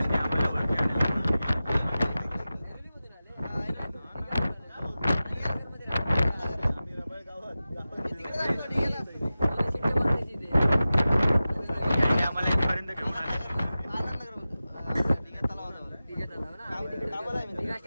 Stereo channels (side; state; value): both; inverted; correlation -0.95